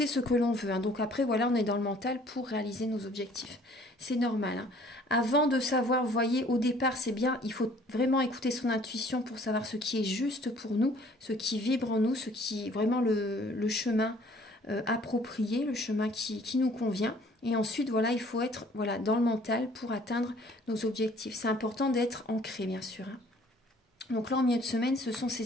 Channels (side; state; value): both; normal; correlation 0.56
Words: ce que l'on veut. Donc après, voilà, on est dans le mental pour réaliser nos objectifs. C'est normal. Avant de savoir, vous voyez, au départ, c'est bien, il faut vraiment écouter son intuition pour savoir ce qui est juste pour nous, ce qui vibre en nous, ce qui est vraiment le chemin approprié, le chemin qui nous convient. Et ensuite, voilà, il faut être voilà, dans le mental pour atteindre nos objectifs. C'est important d'être ancré, bien sûr. Hein. Donc là, en milieu de semaine, ce sont